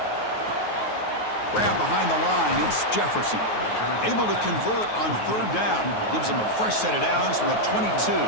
Grab behind the line. It's Jefferson. Able to convert on 3rd down. Gives him a fresh set of downs from the 22.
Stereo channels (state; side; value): late; right; 9.4 ms